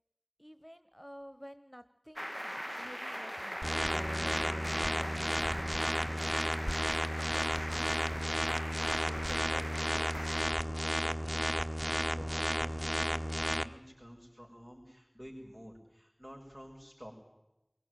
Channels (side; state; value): both; identical; correlation 1.00